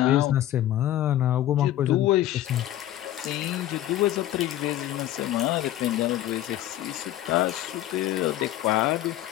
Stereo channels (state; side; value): quieter; right; 13.3 dB